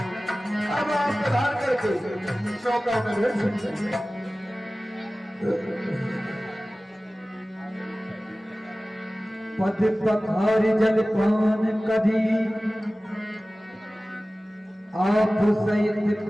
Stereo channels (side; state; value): both; normal; correlation 0.97